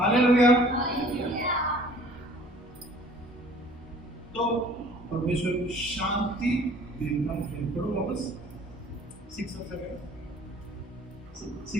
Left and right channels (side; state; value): both; normal; correlation 0.52